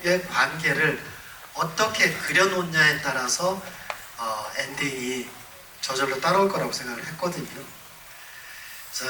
관계를 어떻게 그려놓냐에 따라서 엔딩이 저절로 따라올 거라고 생각을 했거든요.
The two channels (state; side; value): identical; both; correlation 1.00